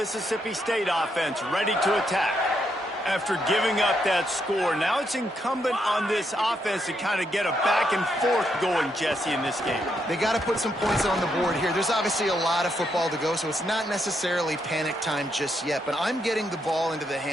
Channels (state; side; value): normal; both; correlation 0.78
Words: State offense, ready to attack. After giving up that score, now it's incumbent on this offense to kind of get a back and forth going, Jesse, in this game. They got to put some points on the board here. There's obviously a lot of football to go, so it's not necessarily panic time just yet, but I'm getting the ball into the